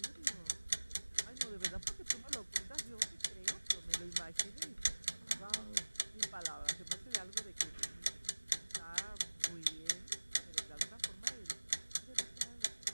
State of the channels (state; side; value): inverted; both; correlation -1.00